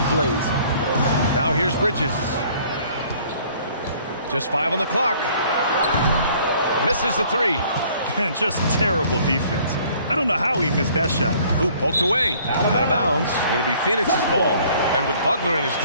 plays. Now here's Bridges. Just 5 on the clock. Misses the 3. And just terrible defense. I don't know how he missed that shot. Ooh, poked away. Out of bounds. It'll be Phoenix's ball. And with Butler in his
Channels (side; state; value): both; inverted; correlation -0.57